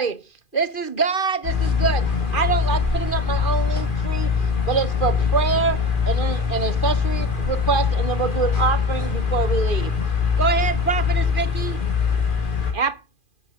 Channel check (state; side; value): late; right; 2.4 ms